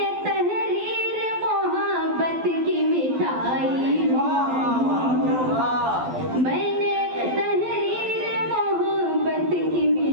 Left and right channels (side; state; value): left; late; 12 ms